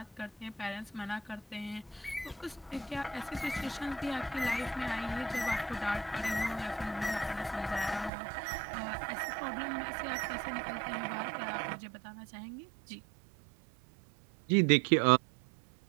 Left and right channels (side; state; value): left; drops out; at 8.1 s